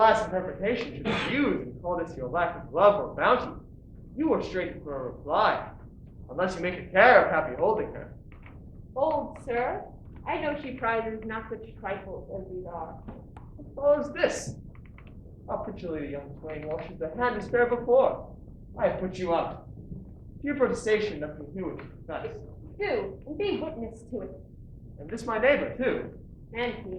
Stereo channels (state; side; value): identical; both; correlation 1.00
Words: interpretation should refuse and call this your lack of love or bounty, you were straight for a reply, unless you make a care of happy holding her. Old sir, I know she prizes not such trifles as these are. What follows this? How prettily the young swain washes the hand to spare before. I have put you out. Your protestation nothing to do with confess. Do, and be witness to it. And this my neighbor, too. And